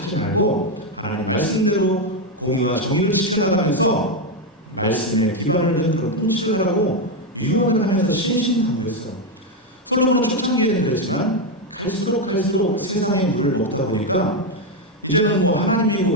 말고 하나님 말씀대로 공의와 정의를 지켜나가면서 말씀에 기반을 둔 그런 통치를 하라고 유언을 하면서 신신당부했어요. 솔로몬은 초창기에는 그랬지만 갈수록 세상의 물을 먹다 보니까 이제는 뭐 하나님이고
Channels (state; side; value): normal; both; correlation 0.06